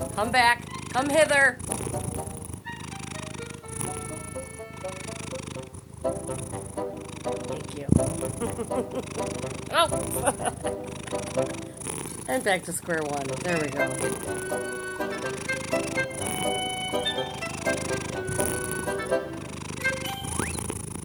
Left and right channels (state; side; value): identical; both; correlation 1.00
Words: Come back. Come hither. Thank you. Oh! And back to square one. There we go.